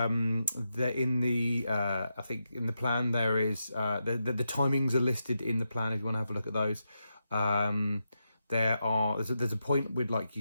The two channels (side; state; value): both; inverted; correlation -0.87